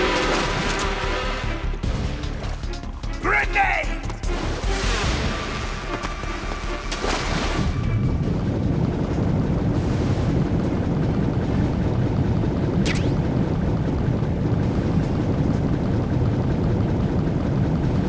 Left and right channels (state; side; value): identical; both; correlation 1.00